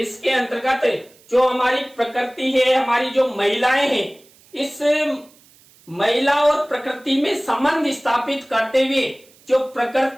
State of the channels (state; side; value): noise; right; hiss, 28 dB below the sound